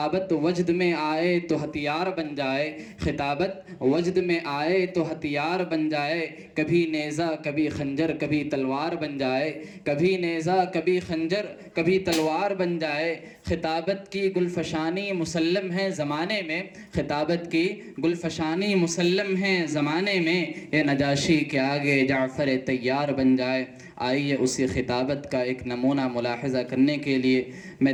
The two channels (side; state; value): both; identical; correlation 1.00